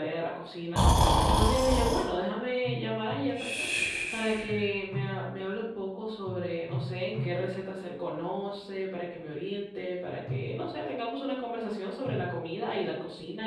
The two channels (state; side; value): identical; both; correlation 1.00